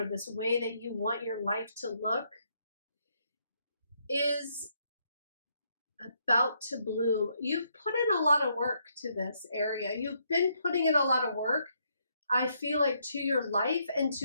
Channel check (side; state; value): both; inverted; correlation -0.74